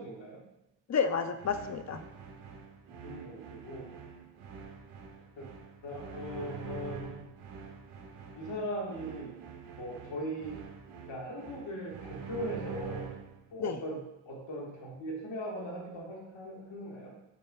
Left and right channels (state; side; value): normal; both; correlation -0.11